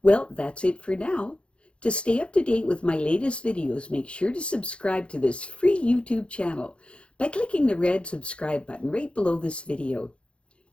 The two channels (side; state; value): right; late; 0.059 ms